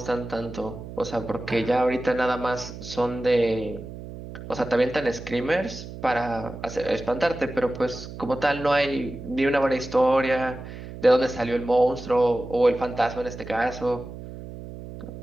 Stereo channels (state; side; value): noise; right; hum, 12 dB below the sound